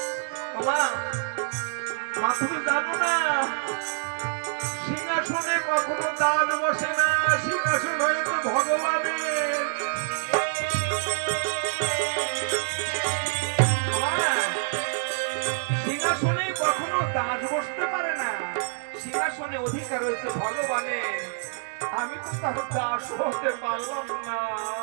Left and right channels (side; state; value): left; silent; digital silence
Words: মা তুমি জানো না সিংহাসনে কখনো দান বসে না, সিংহাসন হয়েছে ভগবানের। সিংহাসনে কখনো দাস বসতে পারে না, সিংহাসনে অধিকার হয়েছে ভগবানের। আমি তো তার দাস হতে পারলাম না।